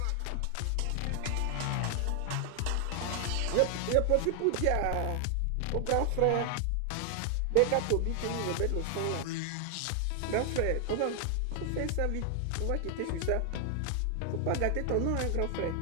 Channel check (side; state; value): both; different; correlation 0.00